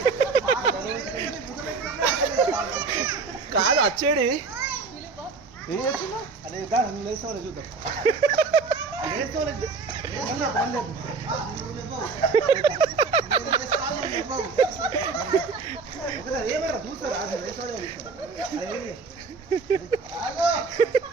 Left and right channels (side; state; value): left; quieter; 4.6 dB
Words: కాదు వచ్చేడి ఏం చేస్తున్నా అదే లేసుకోవాలి చూద్దాం ఏమైనా చూస్తారా